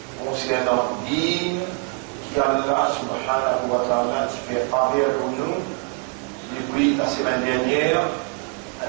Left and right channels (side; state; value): left; quieter; 34.7 dB